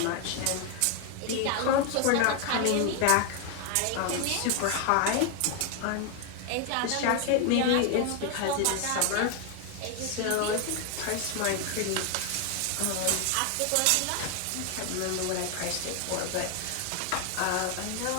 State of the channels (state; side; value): different; both; correlation 0.01